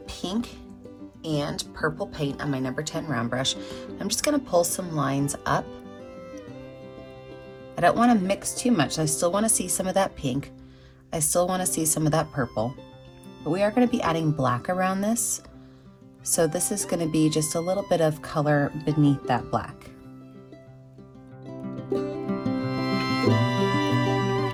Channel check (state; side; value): identical; both; correlation 1.00